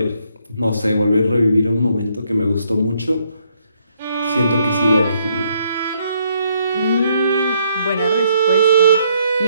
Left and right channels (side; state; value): both; inverted; correlation -0.72